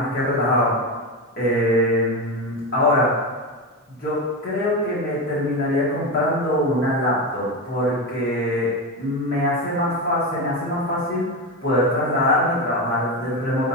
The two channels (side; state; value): both; normal; correlation 0.16